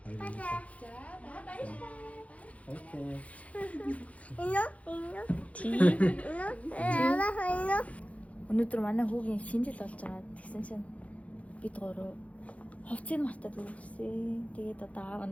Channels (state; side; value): late; right; 0.066 ms